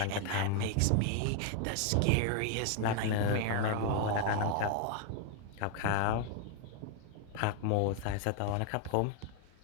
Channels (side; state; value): both; different; correlation 0.00